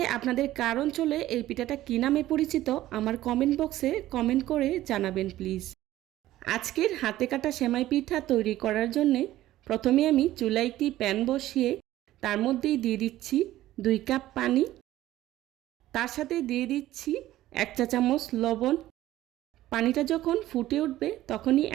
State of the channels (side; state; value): left; quieter; 14.8 dB